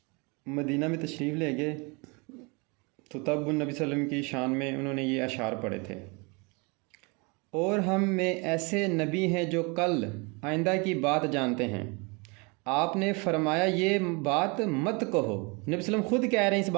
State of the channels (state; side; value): quieter; left; 30.0 dB